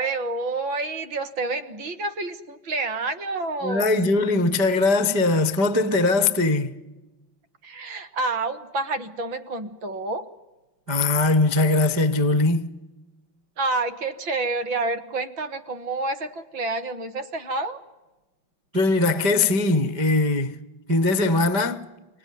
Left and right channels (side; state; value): left; late; 5.1 ms